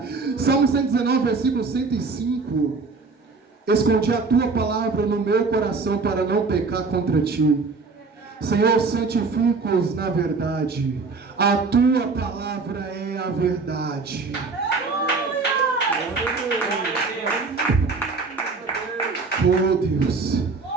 Salmo 119, versículo 105. Escondi a tua palavra no meu coração para não pecar contra ti. Senhor, santifica-os na verdade. A tua palavra é a verdade. Oh Deus,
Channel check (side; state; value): left; quieter; 4.2 dB